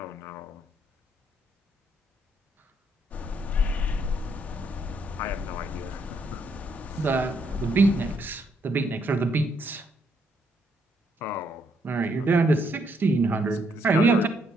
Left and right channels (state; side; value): normal; both; correlation 0.73